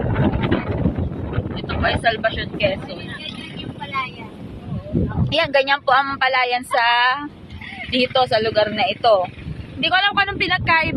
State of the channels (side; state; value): both; identical; correlation 1.00